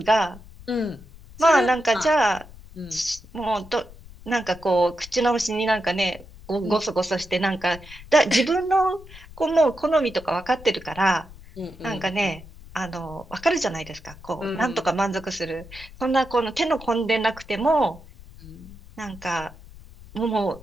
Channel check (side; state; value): left; noise; rumble, 19 dB below the sound